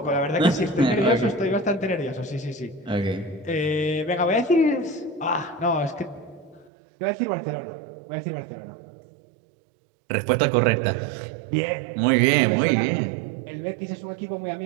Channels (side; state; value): left; drops out; at 6.7 s